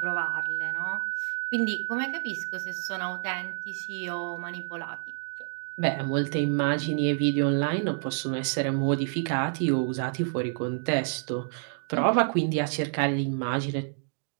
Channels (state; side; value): silent; left; digital silence